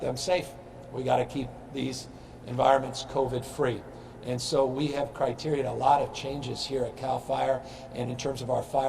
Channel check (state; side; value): identical; both; correlation 1.00